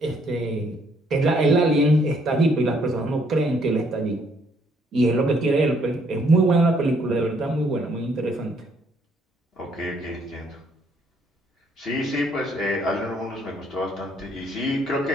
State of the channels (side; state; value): both; normal; correlation 0.67